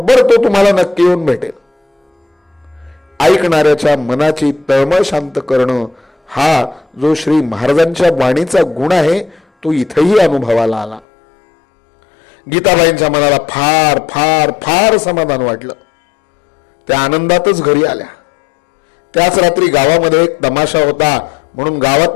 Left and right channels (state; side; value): drops out; right; at 11.0 s